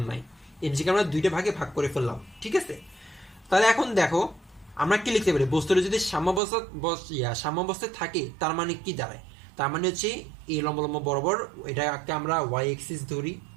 নাই। এমজিকে আমরা দুইটা ভাগে ভাগ করে ফেললাম, ঠিক আছে? তাহলে এখন দেখো আমরা কি লিখতে পারি? বস্তুটা যদি সাম্যাবস্থায় থাকে, তার মানে কি দাঁড়ায়? তার মানে হচ্ছে এই লম্ব লম্ব বরাবর এটাকে আমরা ওয়াই এক্সিস ধরি,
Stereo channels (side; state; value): left; drops out; at 6.4 s